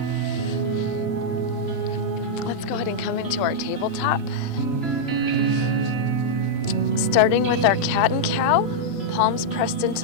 Let's go ahead and come into our tabletop. Starting with our cat and cow, palms pressed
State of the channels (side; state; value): right; late; 3.0 ms